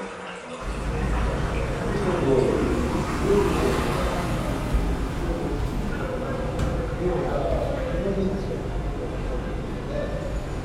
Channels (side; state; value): both; identical; correlation 1.00